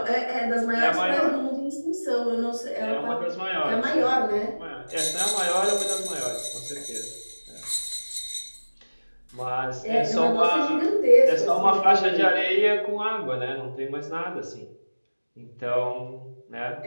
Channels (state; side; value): inverted; both; correlation -1.00